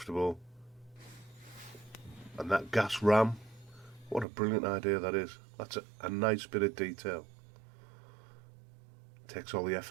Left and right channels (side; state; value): left; drops out; at 4.2 s